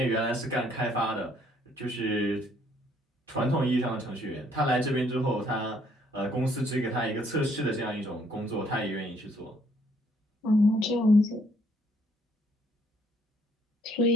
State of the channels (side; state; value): both; normal; correlation 0.65